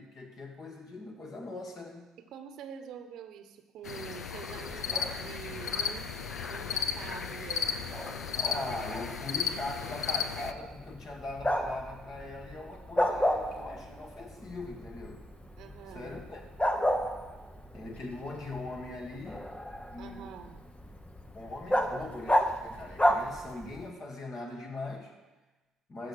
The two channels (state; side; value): normal; both; correlation 0.74